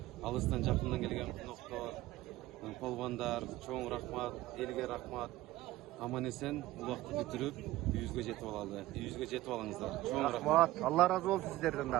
алыстан жакындан келген коноктор, полбандар, чоң рахмат, элге рахмат. Аман эсен улакты бүтүрүп, үйүбүзгө жетип алыңыздар. Чоң рахмат. Алла разы болсун сиздерден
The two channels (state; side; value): quieter; left; 16.6 dB